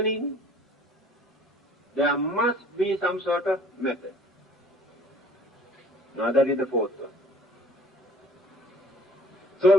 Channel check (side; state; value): both; normal; correlation 0.53